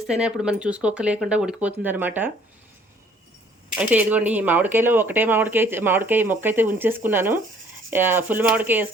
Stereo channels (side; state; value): both; normal; correlation 0.59